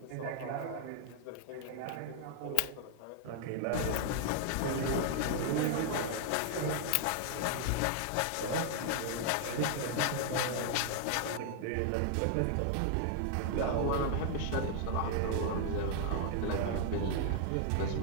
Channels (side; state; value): both; different; correlation 0.00